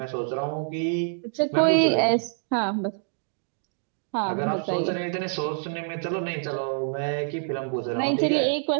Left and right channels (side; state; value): left; silent; digital silence